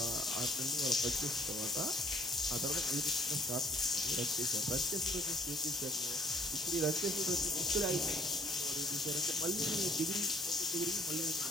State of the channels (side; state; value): both; normal; correlation 0.59